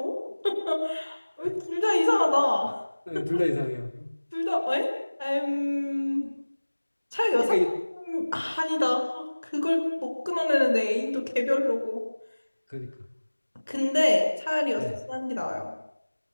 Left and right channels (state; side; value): inverted; both; correlation -1.00